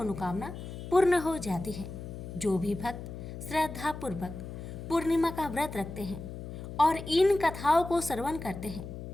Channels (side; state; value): left; noise; hum, 9 dB below the sound